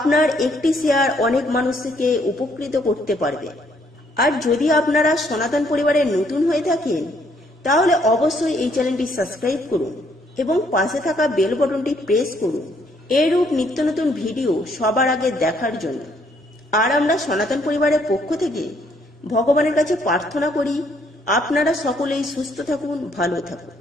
একটি শেয়ার অনেক মানুষকে উপকৃত করতে পারবে। আর যদি আপনারা সনাতন পরিবারে নতুন হয়ে থাকেন তাহলে অবশ্যই এই চ্যানেলটি সাবস্ক্রাইব করুন এবং পাশে থাকা বেল বাটনটি প্রেস করুন এরূপ নিত্য নতুন ভিডিও সবার আগে দেখার জন্য। আর আমরা সনাতন পরিবারের পক্ষ থেকে ভগবানের কাছে প্রার্থনা করি আপনারা সকলেই সুস্থ থাকুন, ভালো থাকুন।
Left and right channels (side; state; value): both; normal; correlation 0.68